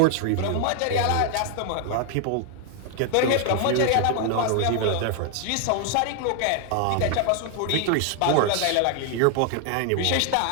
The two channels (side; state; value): both; different; correlation 0.00